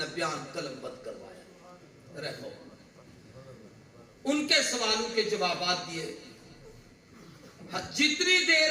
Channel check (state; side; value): identical; both; correlation 1.00